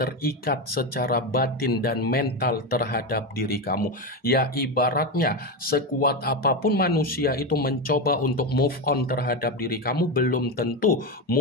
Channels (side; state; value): both; normal; correlation 0.14